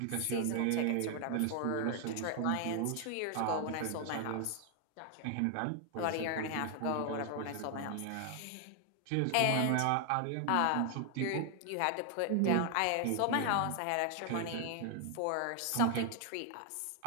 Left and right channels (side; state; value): both; different; correlation 0.00